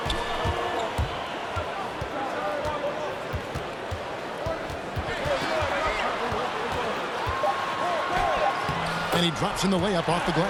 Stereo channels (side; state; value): both; identical; correlation 1.00